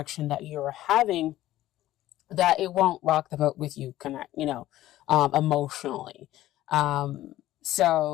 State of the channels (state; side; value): quieter; right; 14.7 dB